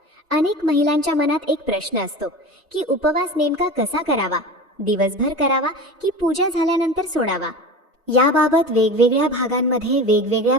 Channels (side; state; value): both; normal; correlation 0.32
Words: अनेक महिलांच्या मनात एक प्रश्न असतो की उपवास नेमका कसा करावा, दिवसभर करावा की पूजा झाल्यानंतर सोडावा. याबाबत वेगवेगळ्या भागांमध्ये वेगवेगळ्या